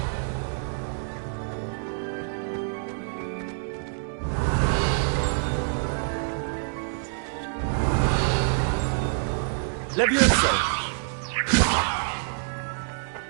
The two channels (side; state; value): left; silent; 60 dB below the other